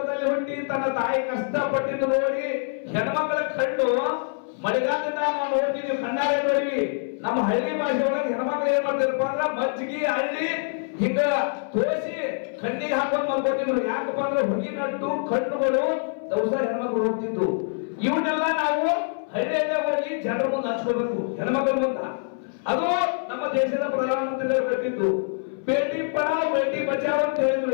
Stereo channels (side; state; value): right; silent; 60 dB below the other